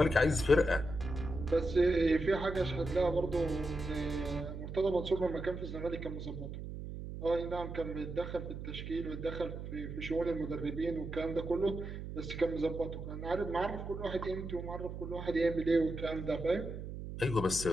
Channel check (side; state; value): right; noise; hum, 8 dB below the sound